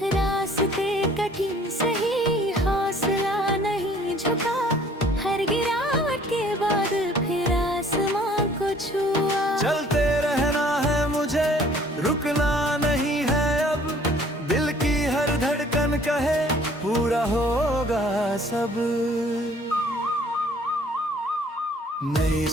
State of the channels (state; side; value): normal; both; correlation 0.56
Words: रास्ते कठिन सही, हौसला नहीं झुका, हर गिरावट के बाद फिर आसमां को छुआ। चलते रहना है मुझे, रुकना नहीं है अब, दिल की हर धड़कन कहे पूरा होगा सब। नई